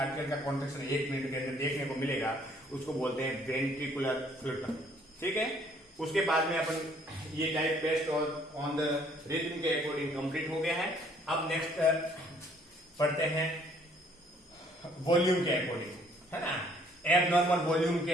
का कॉन्ट्रैक्शन 1 मिनट के अंदर देखने को मिलेगा, उसको बोलते हैं वेंट्रिकुलर फ्लूटर, ठीक है। उसके बाद में अपन ये type based on the rhythm के अकॉर्डिंग कंप्लीट हो गया है। अब नेक्स्ट पढ़ते हैं वॉल्यूम के अकॉर्डिंग, है ना। एबनॉर्मल वॉल्यूम के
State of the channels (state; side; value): normal; both; correlation 0.62